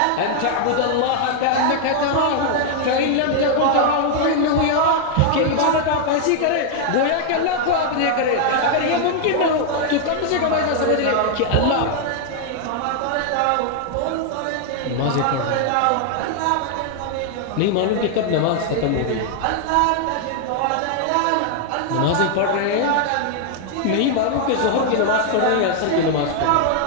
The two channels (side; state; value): both; different; correlation 0.00